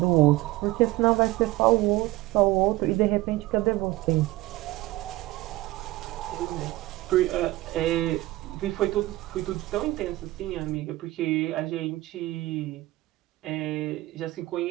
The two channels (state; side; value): quieter; left; 18.5 dB